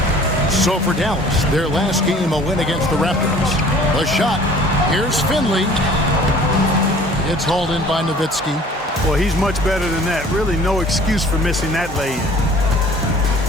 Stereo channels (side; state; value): both; normal; correlation 0.50